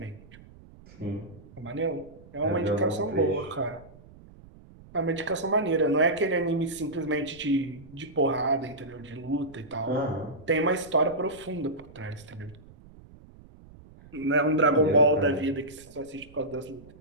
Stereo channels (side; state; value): right; noise; rumble, 21 dB below the sound